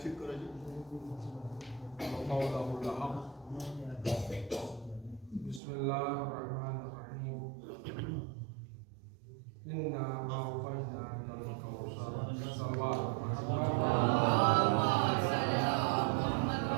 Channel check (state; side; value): drops out; left; at 5.6 s